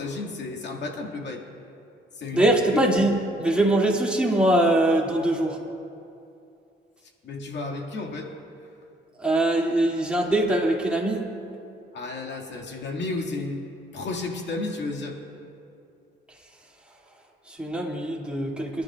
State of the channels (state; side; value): normal; both; correlation 0.65